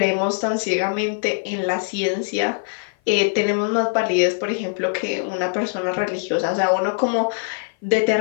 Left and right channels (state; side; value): silent; right; 56 dB below the other